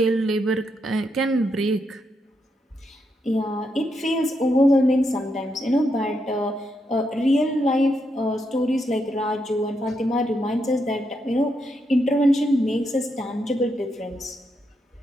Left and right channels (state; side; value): normal; both; correlation 0.81